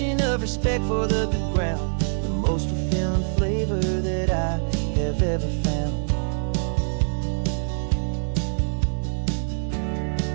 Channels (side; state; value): left; silent; digital silence